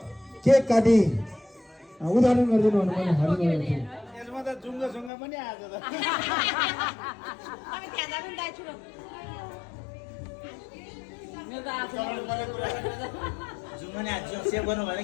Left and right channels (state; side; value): drops out; right; at 5.1 s